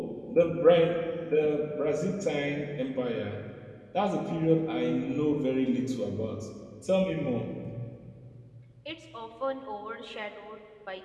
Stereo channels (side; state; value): both; identical; correlation 1.00